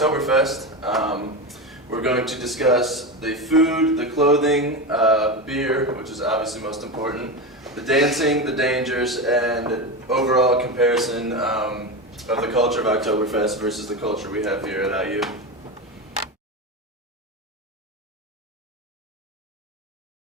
We're going to discuss the food, the clothing, beer, which is obviously most important, the dancing, the dangers, and overall comparison of the culture of Oktoberfest versus the culture we have here at IU.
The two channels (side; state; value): both; normal; correlation 0.19